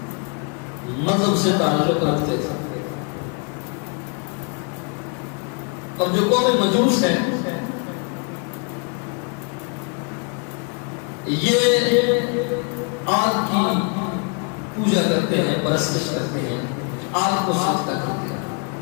مذہب سے تعلق رکھتے تھے، اور جو قوم مجوس ہے یہ آگ کی پوجا کرتے ہیں، پرستش کرتے ہیں، آگ کو سجدہ کرتے ہیں۔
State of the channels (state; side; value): quieter; right; 37.3 dB